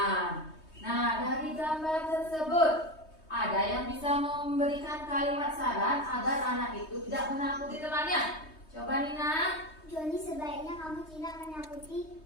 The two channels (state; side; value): late; right; 3.2 ms